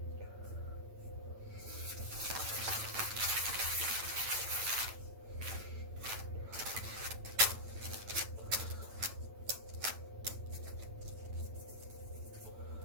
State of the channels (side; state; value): left; late; 9.0 ms